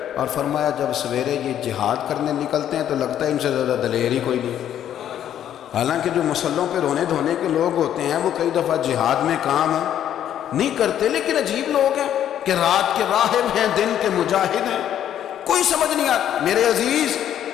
اور فرمایا جب سویرے یہ جہاد کرنے نکلتے ہیں تو لگتا ہے ان سے زیادہ دلیر ہی کوئی نہیں، حالانکہ جو مسلوں پہ رونے دھونے کے لوگ ہوتے ہیں وہ کئی دفعہ جہاد میں کام نہیں کرتے، لیکن عجیب لوگ ہیں کہ رات کے راہب ہیں، دن کے مجاہد ہیں، کوئی سمجھ نہیں آتا۔ میرے عزیز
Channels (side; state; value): right; quieter; 10.5 dB